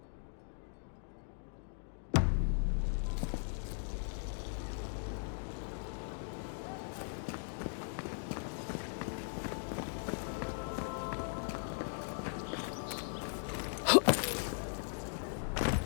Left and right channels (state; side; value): silent; right; digital silence